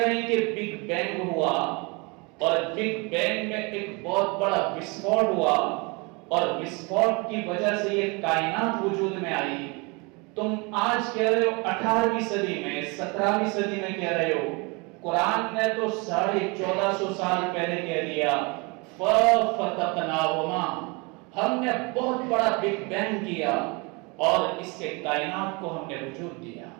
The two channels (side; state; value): left; quieter; 28.9 dB